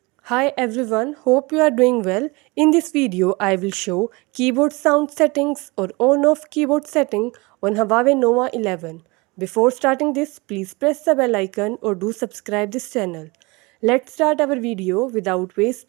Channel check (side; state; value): left; quieter; 25.4 dB